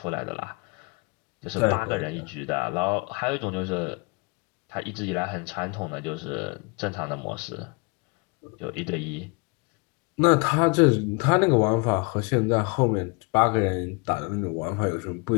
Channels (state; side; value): quieter; right; 30.3 dB